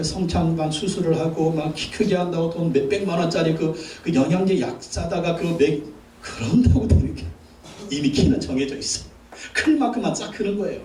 성장판 수술을 하고 막 키 크게 한다고 돈 몇백만 원짜리 그 영양제 약 사다가 그런다고 되는 게 이미 키는 정해져 있어. 클 만큼만 쫙 크는 거예요.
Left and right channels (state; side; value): identical; both; correlation 1.00